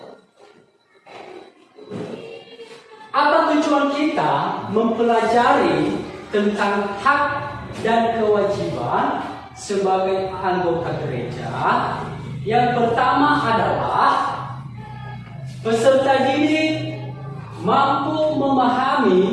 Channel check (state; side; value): identical; both; correlation 1.00